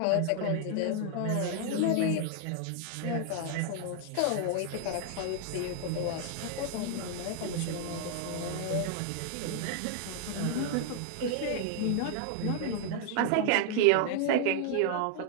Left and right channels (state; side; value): different; both; correlation 0.00